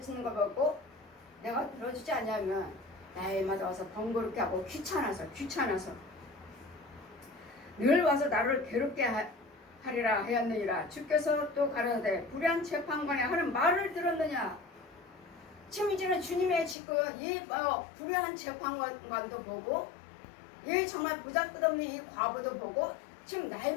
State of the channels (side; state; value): right; drops out; at 16.8 s